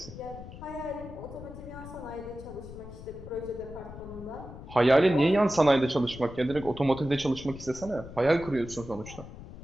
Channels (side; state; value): left; noise; rumble, 14 dB below the sound